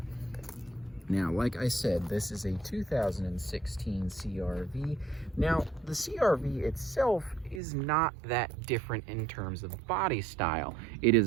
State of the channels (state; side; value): drops out; left; at 7.6 s